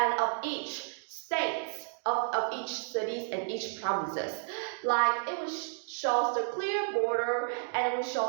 of each states, of each cities and each provinces. Like it will shows the clear border, and it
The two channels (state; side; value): silent; left; digital silence